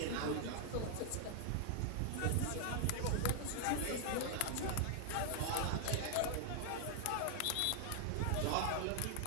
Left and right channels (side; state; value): both; different; correlation 0.00